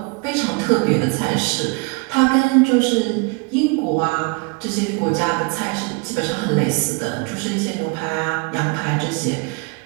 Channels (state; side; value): quieter; left; 30.6 dB